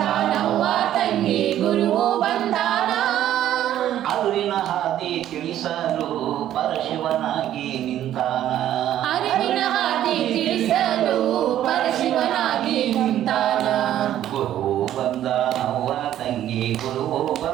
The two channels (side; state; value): left; quieter; 11.9 dB